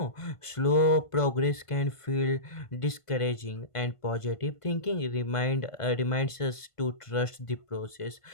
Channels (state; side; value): late; right; 1.5 ms